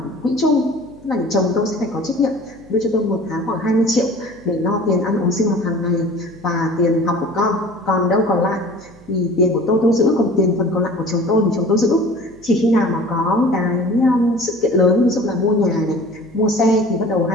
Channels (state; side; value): noise; right; hum, 24 dB below the sound